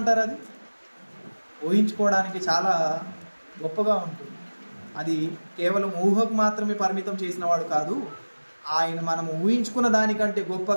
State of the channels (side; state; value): both; inverted; correlation -1.00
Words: అది ఊహించుకోవడానికి చాలా గొప్పగా ఉంటుంది. అది కేవలం ఊహకు మాత్రమే పరిమితం చేసిన వాడు కాదు, ఆయన మనం ఊహించుకున్న దానికంటే